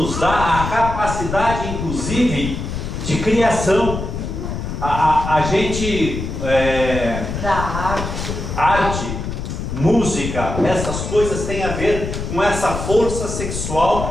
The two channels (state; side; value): noise; left; rumble, 5 dB below the sound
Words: dá a capacidade, inclusive, de criação. A gente... Da arte, música, essas coisas têm a ver com essa força sexual